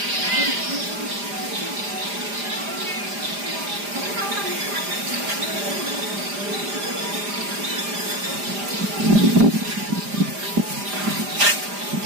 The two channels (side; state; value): left; late; 5.0 ms